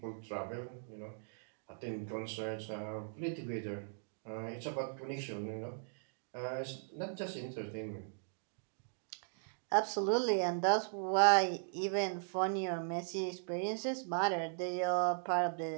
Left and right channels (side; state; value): left; silent; digital silence